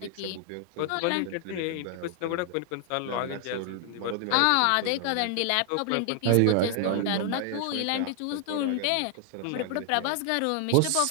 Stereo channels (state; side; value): different; both; correlation 0.00